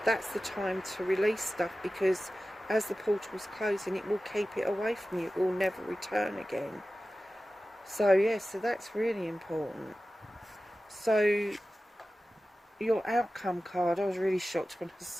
that's the time to release stuff, because as the portal's closing, it will keep it away from you. It will never return again. So yes, so that's really important. So your outcome card, I was really shocked when I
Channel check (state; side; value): normal; both; correlation 0.95